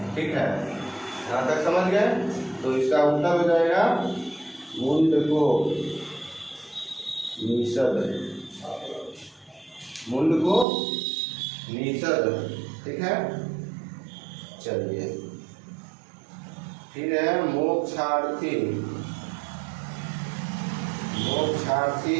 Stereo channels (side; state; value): left; drops out; at 10.7 s